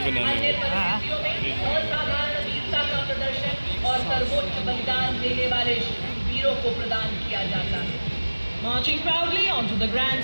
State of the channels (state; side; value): inverted; both; correlation -1.00